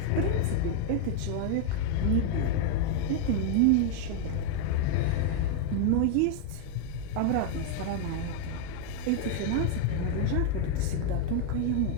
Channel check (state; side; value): different; both; correlation 0.00